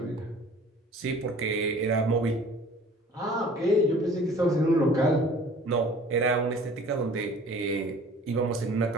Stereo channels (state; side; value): normal; both; correlation 0.48